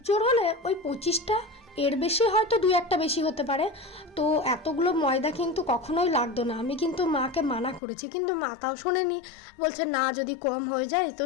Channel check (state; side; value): drops out; right; at 7.8 s